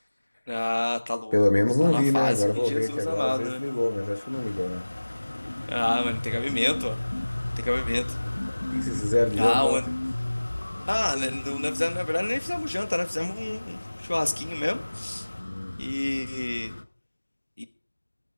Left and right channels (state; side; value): inverted; both; correlation -1.00